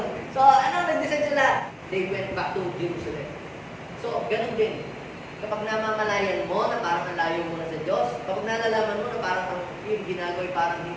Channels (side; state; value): both; identical; correlation 1.00